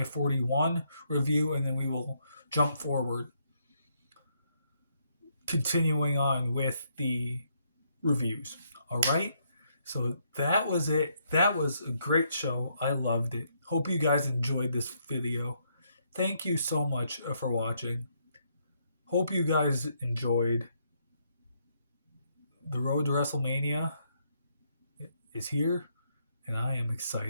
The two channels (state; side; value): inverted; both; correlation -0.74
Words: 41 review, and then we will jump forward, continuing on with the reviews. All right? So that was it. That was a great show. I loved it. Hope you guys enjoyed this video. Thank you so much for watching. Hope you guys enjoyed. The road to WrestleMania is here, and I am